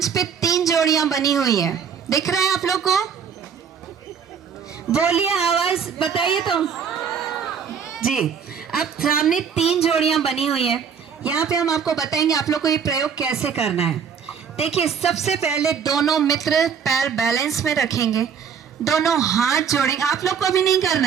पे 3 जोड़ियां बनी हुई हैं, दिख रहा है आप लोग को? बोलिए, आवाज बताइए तो जी। अब सामने 3 जोड़ियां बनी हुई हैं। यहाँ पे हम आपको बताएंगे आप लोग को ये प्रयोग कैसे करना है। देखिए, सबसे पहले दोनों मित्र पैर बैलेंस में रखेंगे, दोनों हाथ जोड़ेंगे। आप लोग को अभी नहीं करना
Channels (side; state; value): left; quieter; 7.0 dB